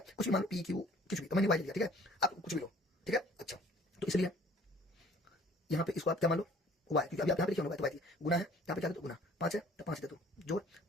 कुछ भी मान लो p q कुछ भी, तो मैंने y लिया, ठीक है, आप कुछ भी लो, ठीक है। अच्छा, तो इसलिए यहाँ पे इसको आप क्या मान लो y, क्योंकि अभी आप यहाँ पे लिखे हो y, तो y गुना है, यहाँ पे क्या दे दो गुना, 5 है तो 5 दे दो, जोड़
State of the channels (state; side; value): normal; both; correlation 0.54